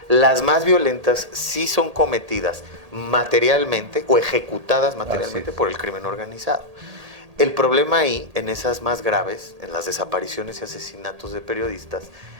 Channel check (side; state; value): left; late; 1.8 ms